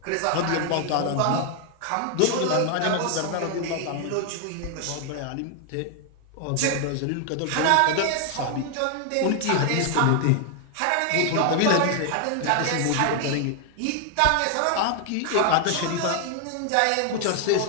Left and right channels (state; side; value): different; both; correlation 0.00